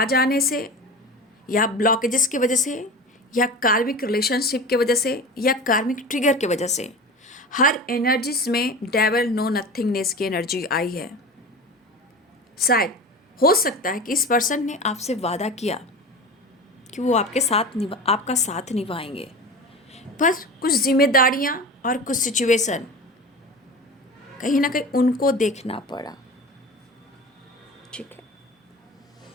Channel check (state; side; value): normal; both; correlation 0.32